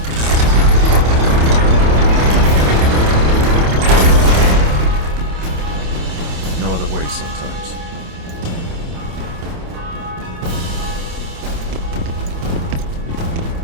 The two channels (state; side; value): late; left; 27 ms